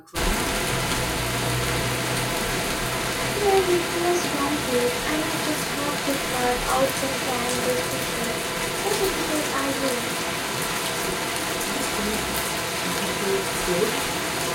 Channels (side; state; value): both; identical; correlation 1.00